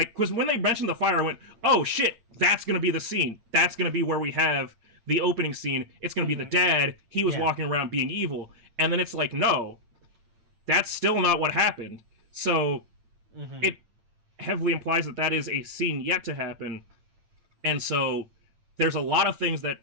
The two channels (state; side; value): late; left; 8.8 ms